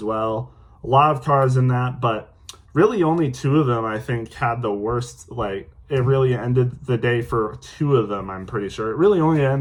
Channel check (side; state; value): both; identical; correlation 1.00